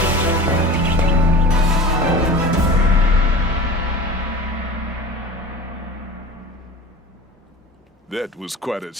That was quite a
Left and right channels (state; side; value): normal; both; correlation 0.36